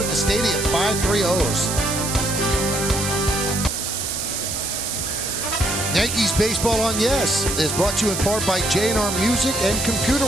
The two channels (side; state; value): right; noise; hiss, 3 dB below the sound